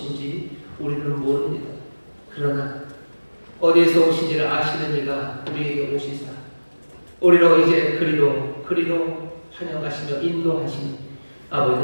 우리는 모릅니다. 그러나 어디에서 오신지를 아시는 이가 우리에게 오시사 우리로 이제 그리로 환영하시며 인도하시니 아버지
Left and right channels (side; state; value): both; inverted; correlation -1.00